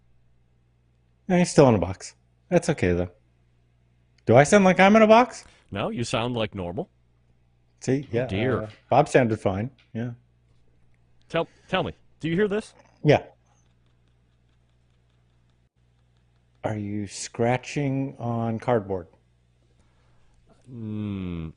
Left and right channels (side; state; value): both; identical; correlation 1.00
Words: He's still in a box. That's okay, though. Do I sound like I'm in a box? No, you sound like normal. See, yeah. Oh, dear. Bob sounded fine. Yeah. Tell me, do you hear this? Yeah. Are you scratching on cardboard? No.